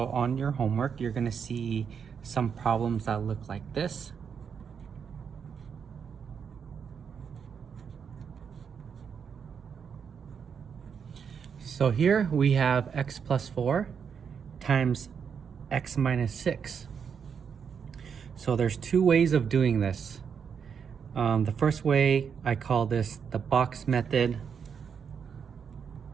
on your homework, you're gonna see some problems that look like this. So here we have x plus 4 times x minus 6. So there's two ways of doing this. The first way, I call this the box method.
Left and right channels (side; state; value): left; quieter; 6.9 dB